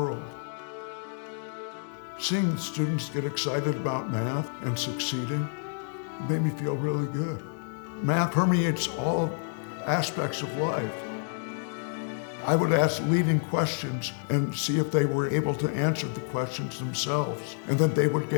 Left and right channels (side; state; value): right; silent; digital silence